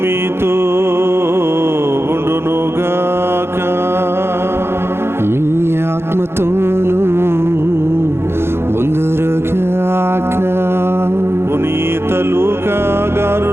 మీతో ఉండునుగాక. మీ ఆత్మతోనూ ఉందురుగాక. పునీత లూకా గారు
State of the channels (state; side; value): late; left; 0.12 ms